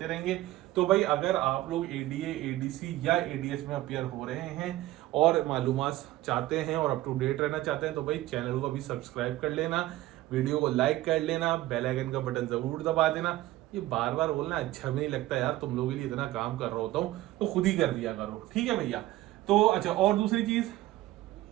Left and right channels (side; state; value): left; quieter; 16.3 dB